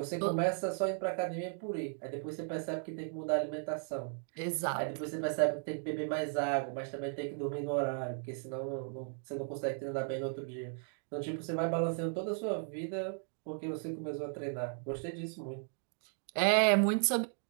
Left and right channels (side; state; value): left; silent; 54 dB below the other